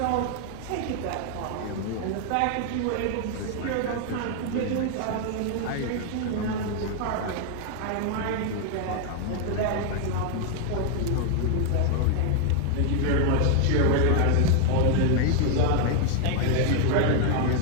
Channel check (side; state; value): both; different; correlation 0.00